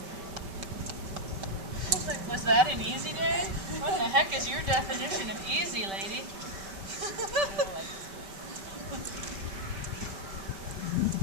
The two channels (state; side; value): late; left; 5.2 ms